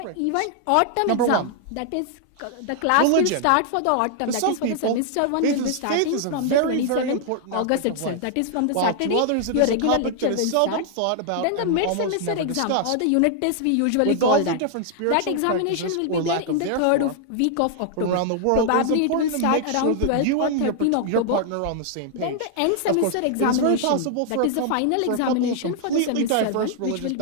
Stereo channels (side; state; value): both; different; correlation 0.00